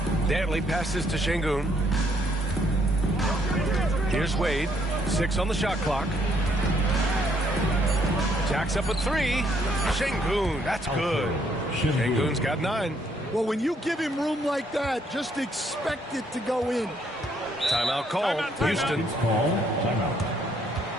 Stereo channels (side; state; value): both; normal; correlation 0.69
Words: Dantley passes to Şengün. Here's Wade. 6 on the shot clock. Jacks up a 3. Şengün, that's good. Şengün's got 9. Well, when you give him room like that, just expect it to go in. Timeout call. Houston. Timeout.